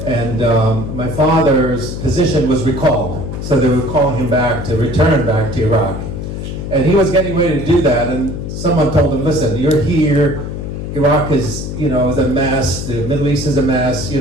And my father's position was recalled. So they would call him back to return back to Iraq. And he was getting ready to do that, and someone told him, listen, you're here, Iraq is, is a mess, the Middle East is a mess,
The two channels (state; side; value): noise; left; hum, 6 dB below the sound